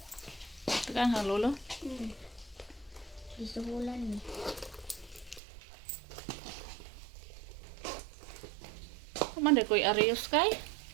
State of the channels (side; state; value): left; drops out; at 5.4 s